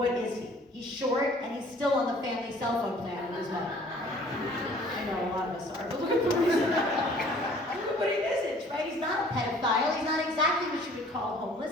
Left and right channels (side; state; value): both; normal; correlation 0.53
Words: is he? He's short, and he's still on the family cell phone plan with his mom. I know a lot of us are, but look at the reason. Look at what he isn't, right? He's not a pedophile. He's not exactly what you would call